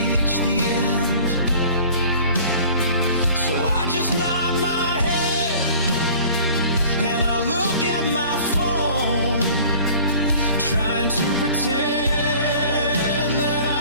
the end, so I just nod my head and I look at my phone, trying to pretend that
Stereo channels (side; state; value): both; inverted; correlation -0.47